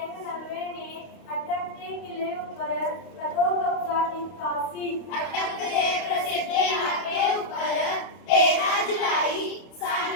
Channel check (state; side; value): late; right; 29 ms